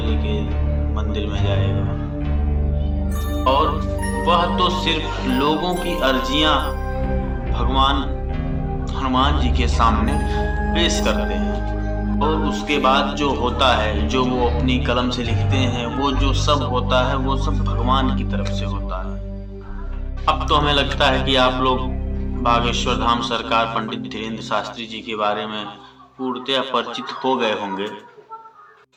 के मंदिर में जाएगा। और वह तो सिर्फ लोगों की अर्जियां भगवान हनुमान जी के सामने पेश करते हैं और उसके बाद जो होता है, जो वो अपनी कलम से लिखते हैं, वो जो सब होता है वो सब भगवान की तरफ से होता है। अब तो हमें लगता है कि आप लोग बागेश्वर धाम सरकार पंडित धीरेन्द्र शास्त्री जी के बारे में पूर्णतया परिचित हो गए होंगे।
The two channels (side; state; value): both; identical; correlation 1.00